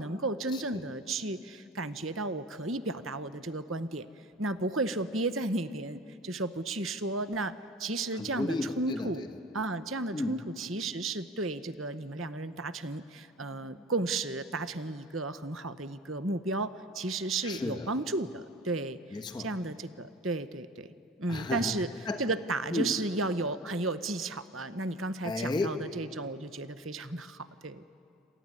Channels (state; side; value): normal; both; correlation 0.39